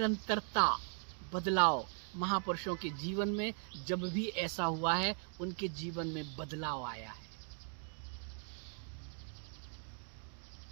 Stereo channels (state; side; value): silent; left; 52 dB below the other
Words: बदलाव। महापुरुषों के जीवन में जब भी ऐसा हुआ है, उनके जीवन में बदलाव आया है।